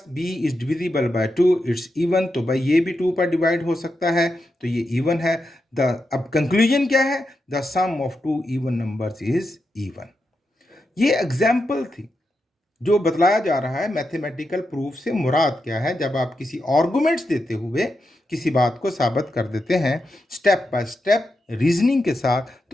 B is divisible by 2, it's even. तो भाई ये भी 2 पर डिवाइड हो सकता है, तो ये इवन है. अब कंक्लूजन क्या है, the sum of two even numbers is even. ये एग्जाम्पल थी. जो बतलाया जा रहा है मैथमेटिकल प्रूफ से मुराद क्या है। जब आप किसी आर्गुमेंट्स देते हुए किसी बात को साबित कर देते हैं स्टेप बाय स्टेप रीजनिंग के साथ,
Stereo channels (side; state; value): both; normal; correlation 0.87